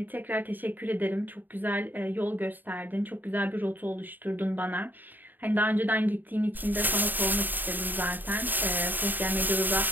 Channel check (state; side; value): late; left; 0.089 ms